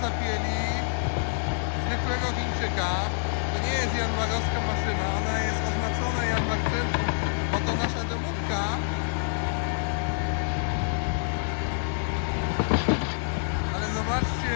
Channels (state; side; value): silent; right; 60 dB below the other